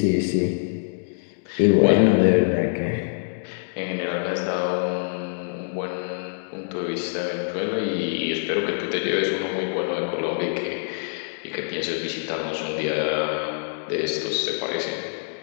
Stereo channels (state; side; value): silent; right; digital silence